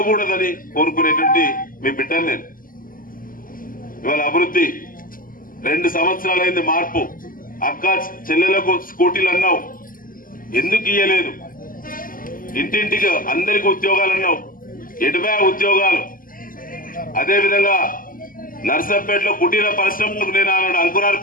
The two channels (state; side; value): late; right; 0.41 ms